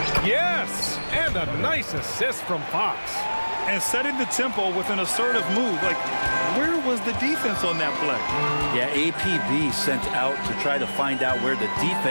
Yes! And a nice assist from Fox. And setting the tempo with an assertive move. Like, where was the defense on that play? Yeah, APB sent out to try to find out where the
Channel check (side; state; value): both; inverted; correlation -1.00